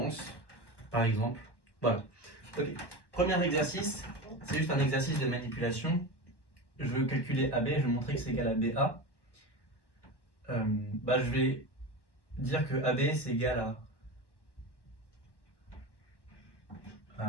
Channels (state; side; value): late; right; 1.1 ms